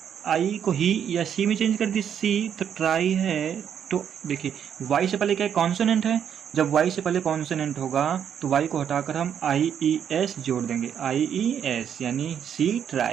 आई को ही या सी में चेंज कर दी, सी तो ट्राई है। तो देखिए वाई से पहले क्या है, कॉन्सोनेंट है, जब वाई से पहले कॉन्सोनेंट होगा तो वाई को हटाकर हम IES जोड़ देंगे, IES यानी सी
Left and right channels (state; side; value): quieter; left; 8.6 dB